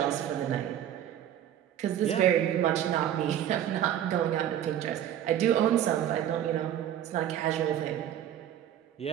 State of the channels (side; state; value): left; quieter; 10.8 dB